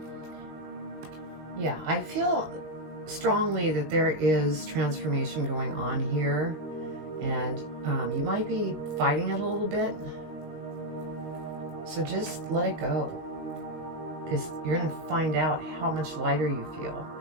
yeah, I feel strongly that there is transformation going on here, might be fighting it a little bit. So just let it go, because you're going to find out how much lighter you feel.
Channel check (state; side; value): late; left; 19 ms